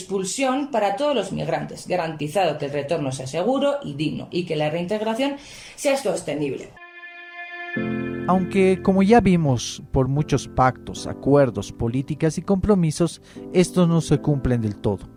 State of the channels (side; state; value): both; identical; correlation 1.00